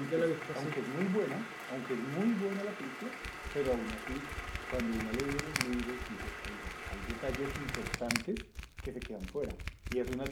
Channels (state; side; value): identical; both; correlation 1.00